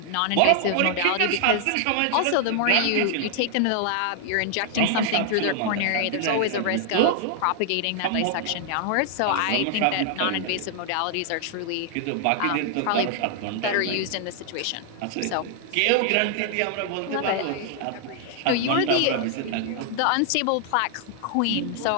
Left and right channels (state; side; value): different; both; correlation 0.00